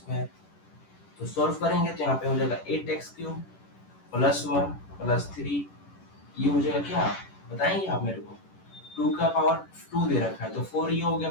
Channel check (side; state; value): right; late; 10 ms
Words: तो सॉल्व करेंगे तो यहाँ पे हो जाएगा 8x क्यूब प्लस 1 प्लस 3, ये हो जाएगा क्या बताएंगे आप मेरे को, 2 का पावर 2 दे रखा है तो 4 ये हो गया,